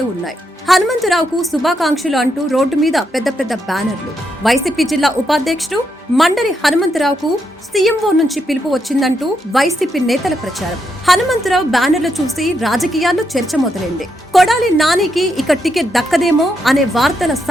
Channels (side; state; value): both; normal; correlation 0.81